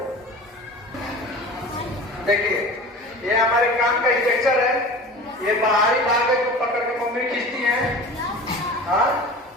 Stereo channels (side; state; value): both; normal; correlation 0.37